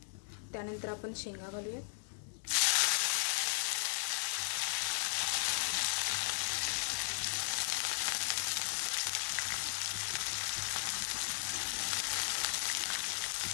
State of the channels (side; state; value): right; silent; 54 dB below the other